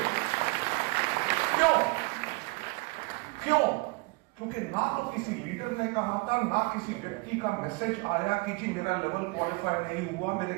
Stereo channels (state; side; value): quieter; left; 26.7 dB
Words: क्यों? क्योंकि ना तो किसी लीडर ने कहा था, ना किसी व्यक्ति का मैसेज आया कि जी मेरा लेवल क्वालिफाई नहीं हुआ, मेरे